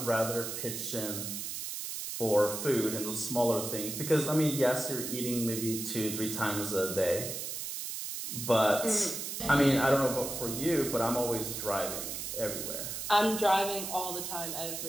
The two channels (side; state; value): right; noise; hiss, 5 dB below the sound